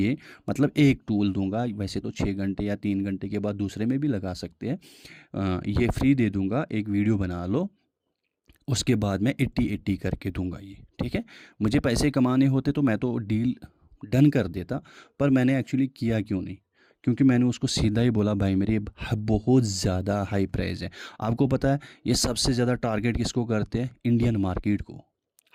मतलब एक टूल दूंगा, वैसे तो 6 घंटे या 3 घंटे के बाद दूसरे में भी लगा सकते हैं, ये फ्री दे दूंगा, एक वीडियो बना लो, उसके बाद मैं 80-80 करके दूंगा ये, ठीक है। मुझे पैसे कमाने होते तो मैं तो डील डन कर देता, पर मैंने एक्चुअली किया क्यों नहीं, क्योंकि मैंने उसको सीधा ही बोला भाई मेरे बहुत ज़्यादा हाई प्राइस है। आपको पता है ये सबसे ज़्यादा टारगेट किसको करते हैं, इंडियन मार्केट को।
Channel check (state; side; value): identical; both; correlation 1.00